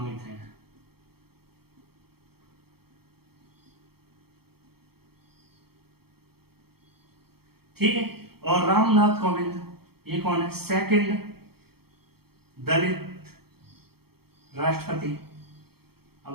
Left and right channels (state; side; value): late; left; 0.96 ms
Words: है। ठीक है, और रामनाथ कोविंद, ये कौन है? सेकंड दलित राष्ट्रपति।